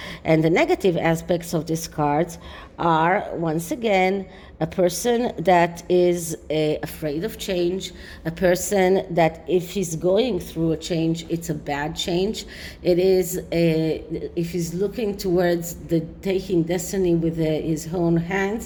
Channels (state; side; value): identical; both; correlation 1.00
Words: and the negative aspects of this card are, once again, a person that is afraid of change, a person that if he's going through a change, it's a bad change. It is if he's looking towards the taking destiny with his own